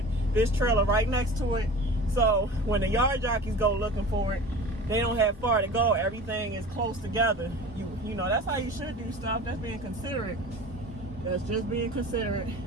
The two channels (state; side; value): normal; both; correlation 0.37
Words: this trailer right next to it. So when the yard jockeys go looking for it, they don't have far to go. Everything is close together. You know, that's how you should do stuff. That's being considerate. That's just being considerate.